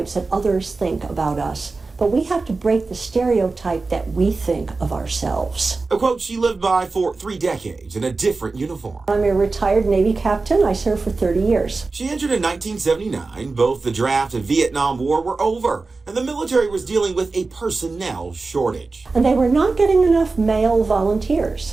that others think about us, but we have to break the stereotype that we think of ourselves. A quote she lived by for 3 decades in a different uniform. I'm a retired Navy captain. I served for 30 years. She entered in 1979. Both the draft and Vietnam War were over, and the military was dealing with a personnel shortage. And they were not getting enough male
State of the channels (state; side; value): quieter; left; 3.8 dB